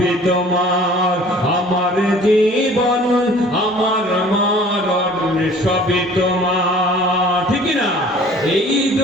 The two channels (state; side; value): normal; both; correlation 0.49